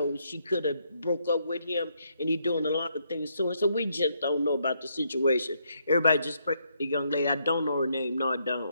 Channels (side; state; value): both; inverted; correlation -0.75